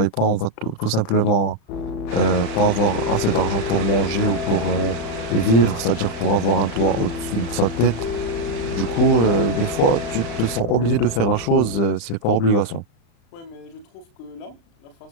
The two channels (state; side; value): late; right; 35 ms